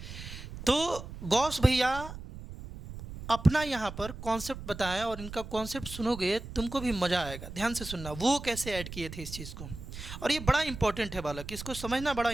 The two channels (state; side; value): noise; right; rumble, 11 dB below the sound